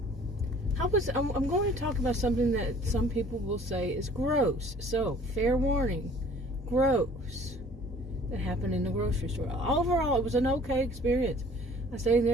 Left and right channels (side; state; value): both; normal; correlation 0.52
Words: I'm going to talk about something that some people will say is gross. So, fair warning, gross. That happened in the grocery store. Overall, it was an okay experience. I stayed